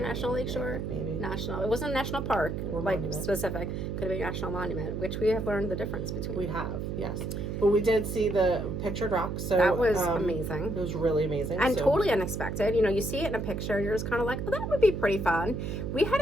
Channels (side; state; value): right; noise; hum, 3 dB below the sound